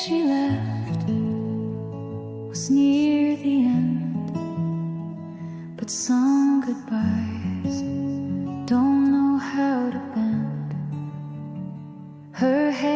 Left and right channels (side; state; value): both; identical; correlation 1.00